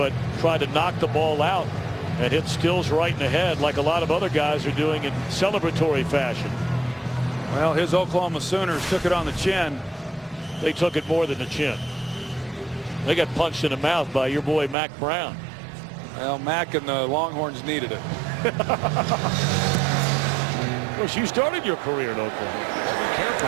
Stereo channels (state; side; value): drops out; left; at 14.8 s